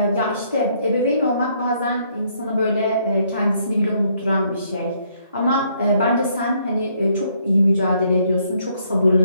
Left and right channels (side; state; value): both; inverted; correlation -0.69